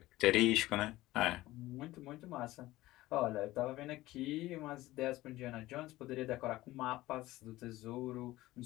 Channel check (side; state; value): right; quieter; 17.3 dB